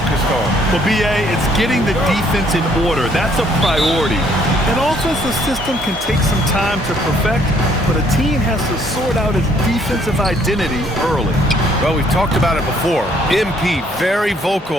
on? Well, B.A., it's getting the defense in order. That's a priority. And also, as the system can take some time to perfect, but a team has to sort out its defensive identity early. Well, we've talked about it before. MP, very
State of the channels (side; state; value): both; normal; correlation 0.65